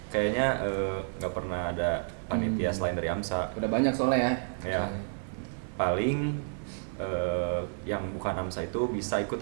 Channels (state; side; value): silent; left; digital silence